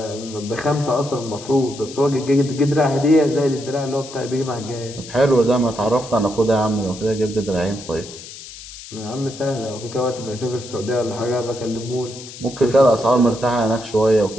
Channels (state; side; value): noise; left; hiss, 15 dB below the sound